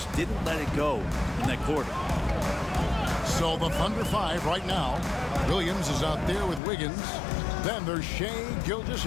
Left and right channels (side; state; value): right; drops out; at 6.6 s